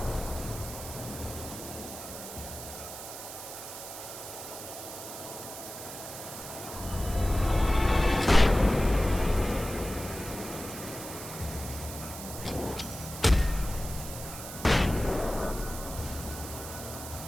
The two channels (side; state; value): right; noise; hiss, 10 dB below the sound